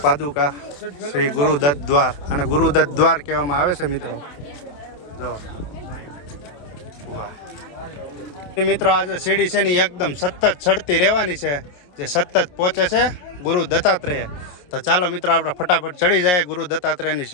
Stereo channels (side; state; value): right; late; 28 ms